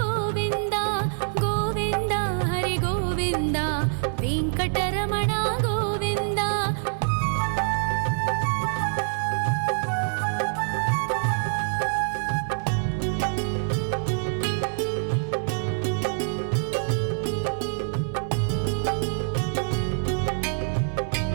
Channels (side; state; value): left; silent; digital silence